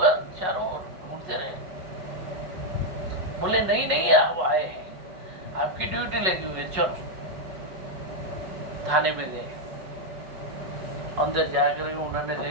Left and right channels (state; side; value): late; left; 5.4 ms